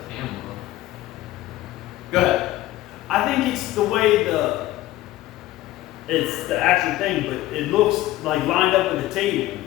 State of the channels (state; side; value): quieter; right; 15.9 dB